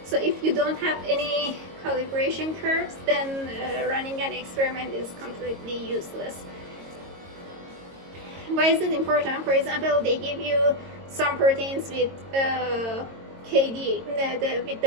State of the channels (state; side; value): late; left; 22 ms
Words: So if you don't have any calibration curves, then running an experiment is completely useless. Why is it important? For example, they give you some proteins with KD, with